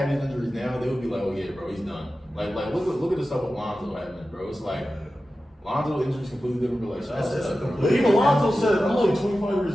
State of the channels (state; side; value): normal; both; correlation 0.94